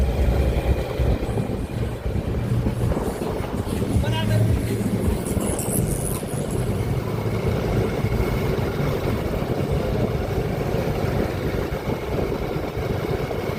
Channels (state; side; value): identical; both; correlation 1.00